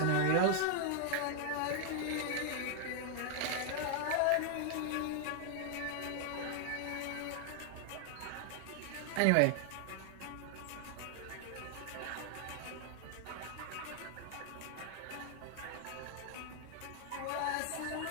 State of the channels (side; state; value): both; different; correlation 0.00